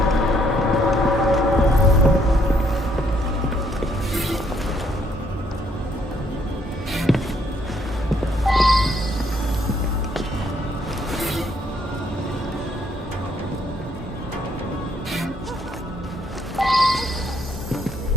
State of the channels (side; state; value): both; normal; correlation 0.68